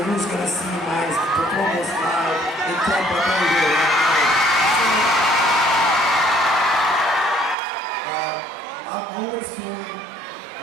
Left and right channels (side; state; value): left; drops out; at 7.6 s